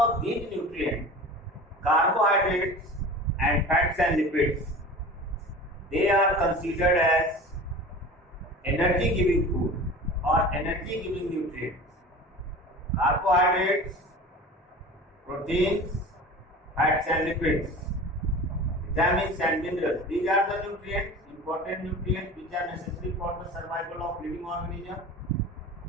these nutrients, carbohydrates and fats and lipids, they are considered as energy giving food or energy giving nutrients. Carbohydrates, proteins, fats and lipids, vitamins and minerals, these are the nutrients, important nutrients which are necessary for the survival of living organism.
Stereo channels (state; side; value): normal; both; correlation 0.37